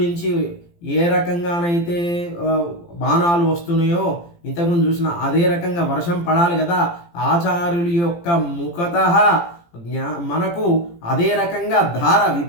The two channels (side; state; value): right; late; 17 ms